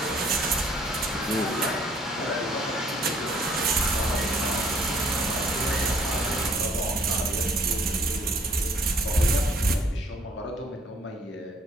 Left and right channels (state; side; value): normal; both; correlation 0.61